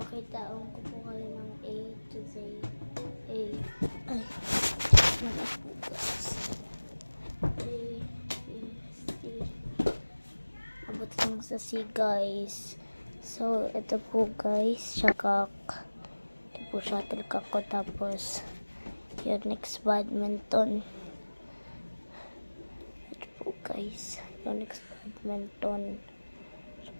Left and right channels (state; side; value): inverted; both; correlation -1.00